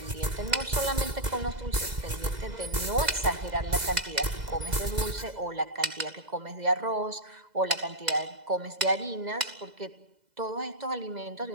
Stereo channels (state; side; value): late; left; 2.0 ms